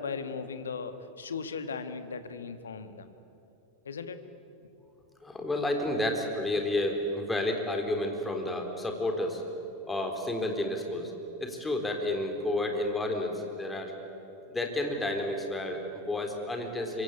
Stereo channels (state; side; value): normal; both; correlation 0.43